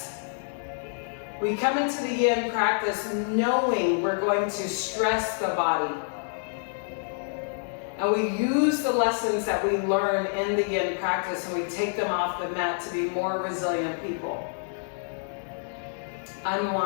We come into the Yin practice knowing we're going to stress the body. And we use the lessons that we learn in the Yin practice and we take them off the mat to be more resilient people.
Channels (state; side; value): silent; right; 60 dB below the other